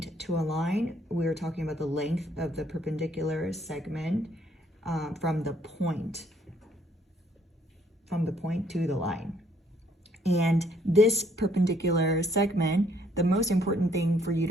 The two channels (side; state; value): both; normal; correlation 0.66